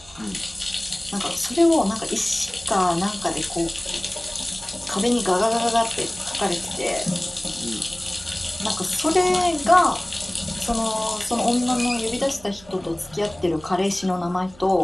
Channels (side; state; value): right; noise; hum, 24 dB below the sound